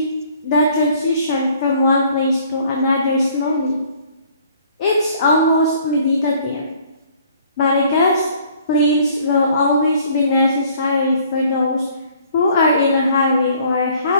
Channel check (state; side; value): inverted; both; correlation -0.58